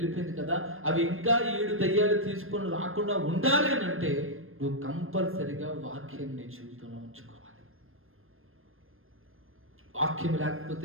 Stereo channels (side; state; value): left; late; 0.60 ms